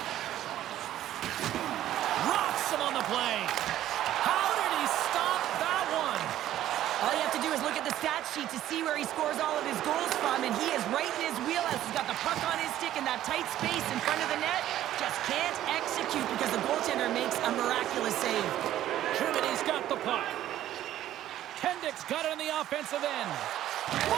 Rocks him on the play. How did he stop that one? All you have to do is look at the stat sheet to see where he scores all of his goals from, and he is right in his wheelhouse. He's got the puck on his stick in that tight space in front of the net. Just can't execute because the goaltender makes a miraculous save. Germany's got the puck. Kendrick's got it on the offensive end.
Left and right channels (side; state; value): left; quieter; 12.8 dB